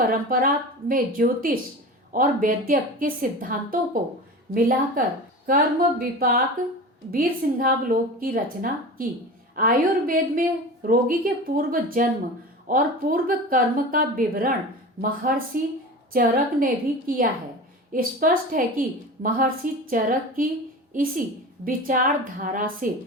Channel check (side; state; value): both; normal; correlation 0.32